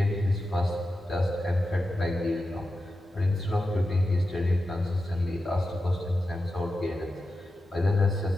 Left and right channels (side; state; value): both; normal; correlation 0.91